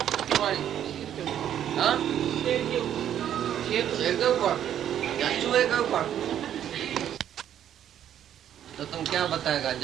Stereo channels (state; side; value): quieter; left; 10.3 dB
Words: शेर के ऊपर या चूहे के ऊपर? तो तुम क्या बताएगा?